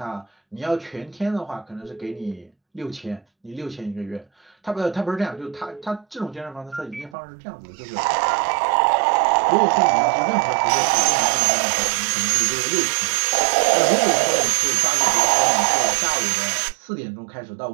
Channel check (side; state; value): left; drops out; at 7.2 s